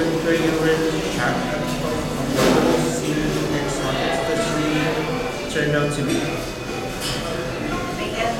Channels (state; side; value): identical; both; correlation 1.00